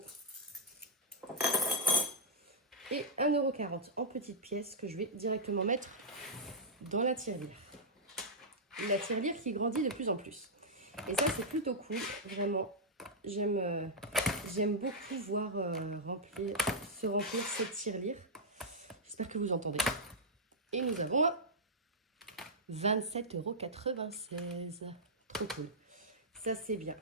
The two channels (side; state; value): both; normal; correlation -0.10